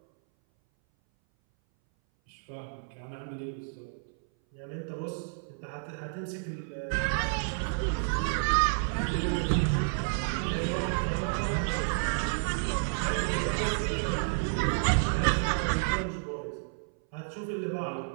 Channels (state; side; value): silent; left; 57 dB below the other